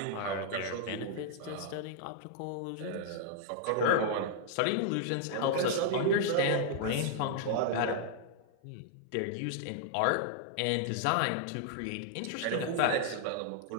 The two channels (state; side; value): different; both; correlation -0.01